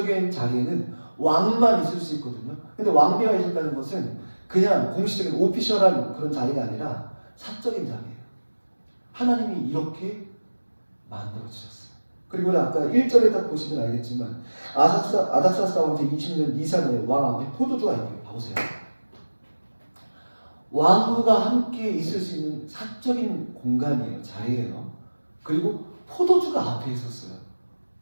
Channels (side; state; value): both; inverted; correlation -1.00